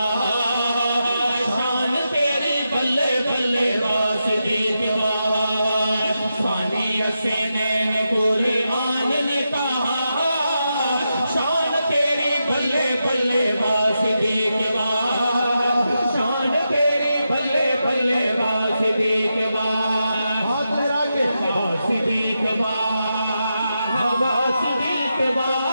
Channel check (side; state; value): both; inverted; correlation -0.87